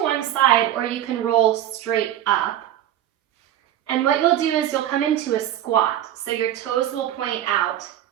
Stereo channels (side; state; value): left; quieter; 11.8 dB